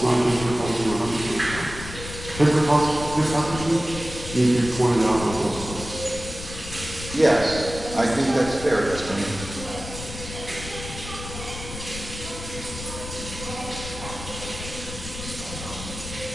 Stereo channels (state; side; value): noise; left; rumble, 10 dB below the sound